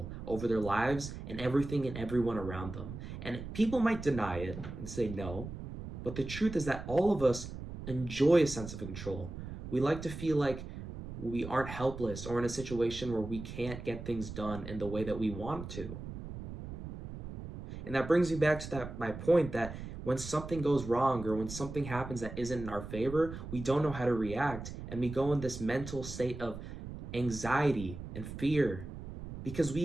over their lives and everything and everyone around them. And people might deny it and say no, but the truth is that all of us enjoy a sense of control. We like to feel like we aren't helpless or in a situation where we can't get things done in the way that we want to. And that brings me back to my point that when something goes wrong or when something happens that isn't in our favor, we don't know how to react and we go in this mental state of anxiety and fear because we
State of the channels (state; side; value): noise; right; rumble, 9 dB below the sound